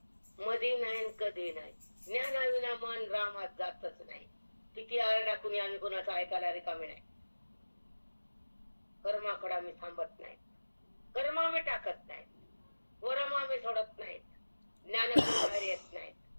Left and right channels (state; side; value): inverted; both; correlation -1.00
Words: मध्ये नाही, कधी नाही. ज्ञानाविना मन रामात जातच नाही. किती आरडा कुणी आम्ही कोणाचं ऐकायला रिकामी नाही. कर्माकडे आम्ही थांबत नाही, कर्म आम्ही टाकत नाही, वरम आम्ही सोडत नाहीत, ज्ञानाकडे बाहेर येत नाहीत,